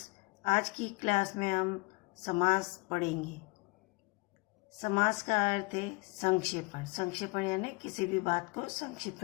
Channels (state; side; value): quieter; right; 26.9 dB